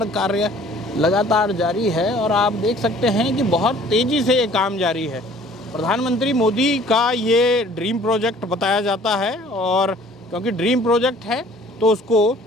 कार्य लगातार जारी है और आप देख सकते हैं कि बहुत तेज़ी से ये काम जारी है। प्रधानमंत्री मोदी का ये ड्रीम प्रोजेक्ट बताया जाता है और क्योंकि ड्रीम प्रोजेक्ट है तो उसको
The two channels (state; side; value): normal; both; correlation 0.53